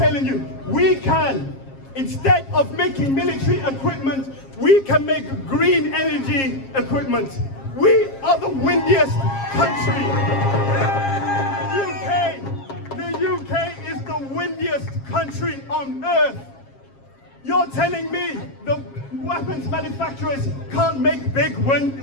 you, we can, instead of making military equipment, we can make green energy equipment. We are the windiest country. The UK is the windiest country on earth. You're telling me the weapons manufacturers can't make big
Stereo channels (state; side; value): late; right; 7.4 ms